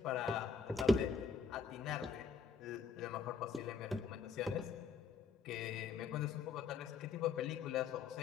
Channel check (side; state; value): right; quieter; 5.3 dB